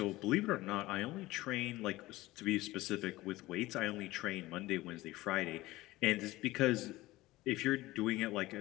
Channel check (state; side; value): quieter; right; 18.4 dB